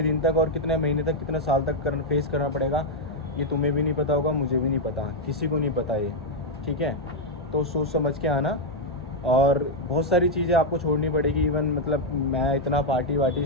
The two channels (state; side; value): normal; both; correlation -0.01